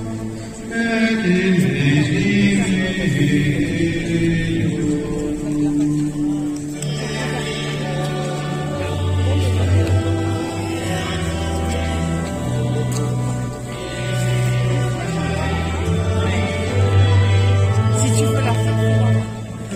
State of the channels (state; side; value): identical; both; correlation 1.00